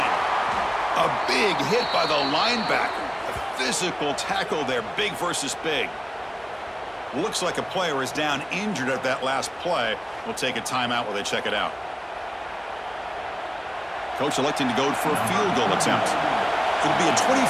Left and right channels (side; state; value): both; identical; correlation 1.00